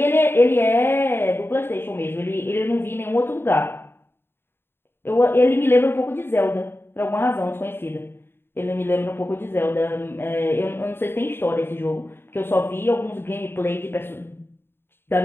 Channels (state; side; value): late; right; 0.11 ms